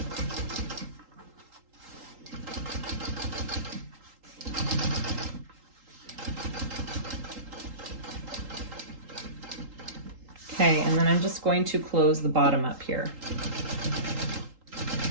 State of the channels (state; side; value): late; left; 3.8 ms